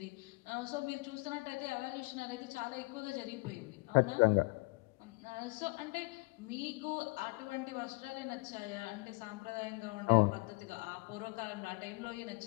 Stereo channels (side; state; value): right; quieter; 27.0 dB